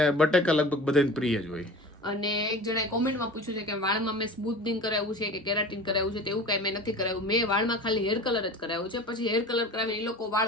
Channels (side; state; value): both; normal; correlation 0.37